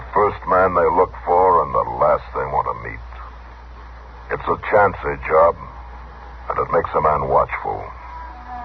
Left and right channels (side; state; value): both; identical; correlation 1.00